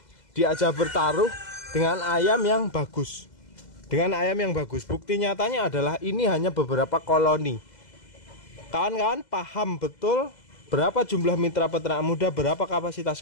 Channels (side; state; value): right; late; 2.0 ms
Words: diajak bertaruh dengan ayam yang bagus. Dengan ayam yang bagus. Bukti nyatanya adalah ini hanya beberapa koloni. Kawan-kawan paham betul berapa jumlah mitra peternak muda, berapa